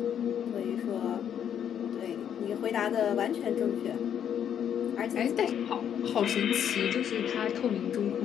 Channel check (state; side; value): quieter; right; 9.0 dB